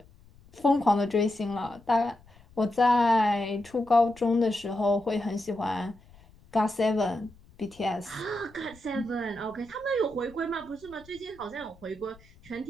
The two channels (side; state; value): left; noise; rumble, 26 dB below the sound